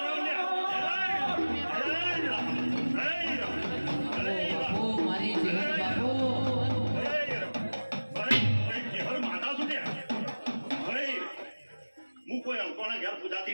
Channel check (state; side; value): inverted; both; correlation -1.00